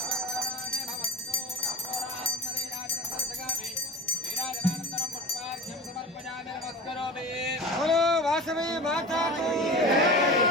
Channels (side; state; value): both; normal; correlation 0.32